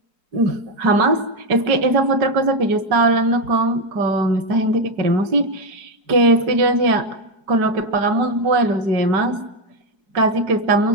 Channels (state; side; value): late; left; 5.2 ms